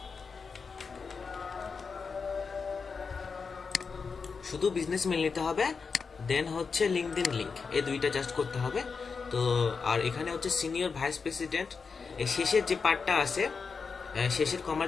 শুধু বিজনেস মেইল নিতে হবে। দেন হচ্ছে লিঙ্কডইন লিংক, এই দুইটা জাস্ট করতে হবে। তো আর এখানে হচ্ছে সিনিয়র ভাইস প্রেসিডেন্ট, এই শেষের যে পার্টটা আছে, শেষের কমার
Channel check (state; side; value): quieter; right; 5.2 dB